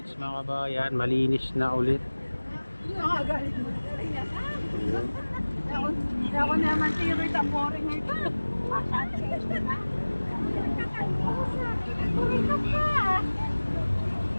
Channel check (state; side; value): inverted; both; correlation -1.00